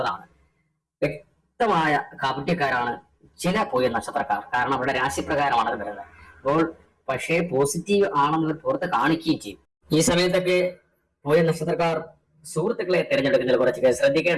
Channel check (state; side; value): identical; both; correlation 1.00